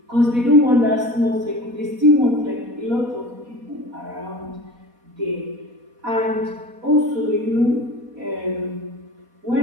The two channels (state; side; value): late; left; 4.1 ms